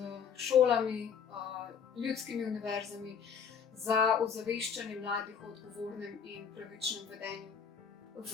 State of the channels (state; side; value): quieter; right; 7.0 dB